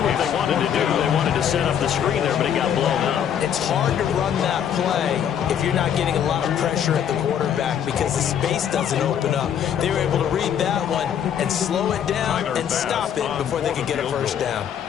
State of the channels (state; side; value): quieter; right; 9.0 dB